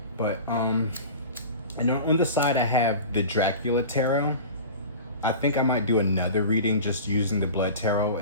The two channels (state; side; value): inverted; both; correlation -0.36